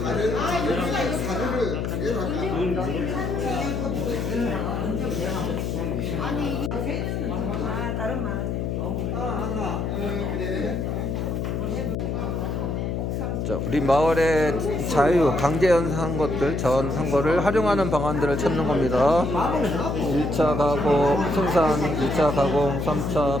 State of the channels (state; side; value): noise; left; hum, 1 dB below the sound